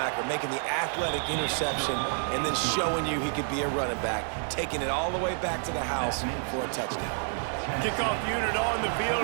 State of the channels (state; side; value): silent; left; 59 dB below the other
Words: making the athletic interception and then showing you he could be a running back, taking it all the way back to the house for a touchdown. Kickoff unit on the